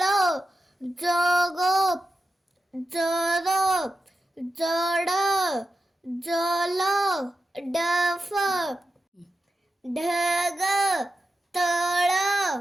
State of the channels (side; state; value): both; normal; correlation 0.89